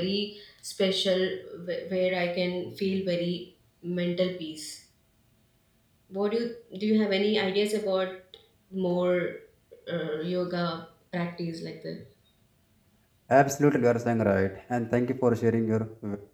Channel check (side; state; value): both; identical; correlation 1.00